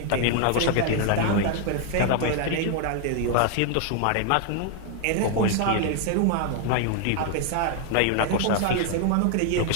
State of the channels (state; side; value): different; both; correlation 0.00